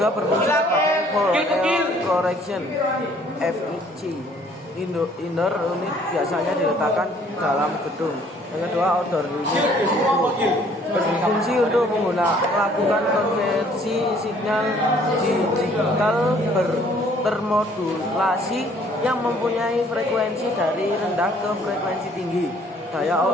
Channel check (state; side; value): normal; both; correlation 0.59